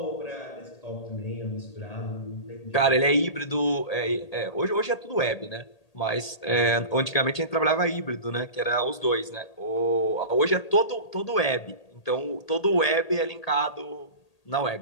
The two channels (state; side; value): late; right; 1.8 ms